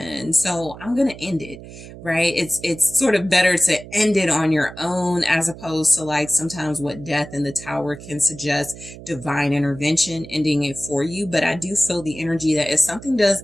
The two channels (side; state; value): right; noise; hum, 15 dB below the sound